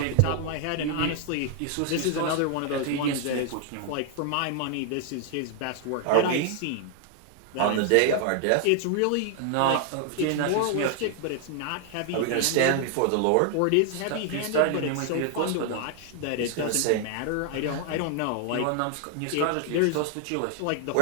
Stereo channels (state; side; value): different; both; correlation 0.00